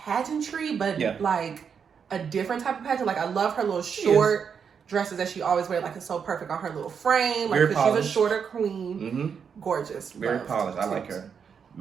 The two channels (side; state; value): left; quieter; 6.8 dB